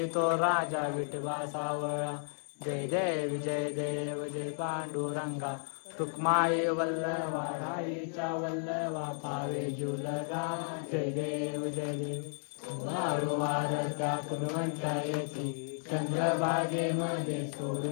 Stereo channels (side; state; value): right; silent; digital silence